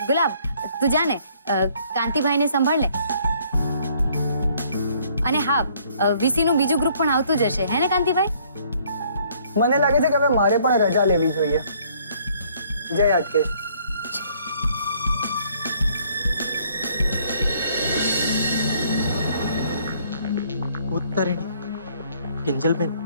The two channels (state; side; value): inverted; both; correlation -0.62